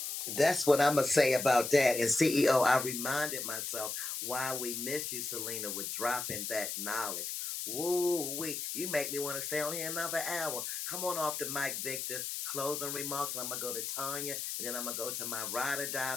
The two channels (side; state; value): left; noise; hiss, 4 dB below the sound